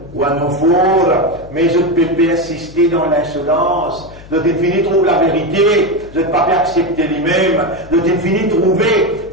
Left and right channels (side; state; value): left; noise; hum, 19 dB below the sound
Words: wa nufur. Mais je ne peux pas assister dans l'insolence. Je t'ai trouver la vérité, je ne peux pas accepter lui-même, je t'ai trouver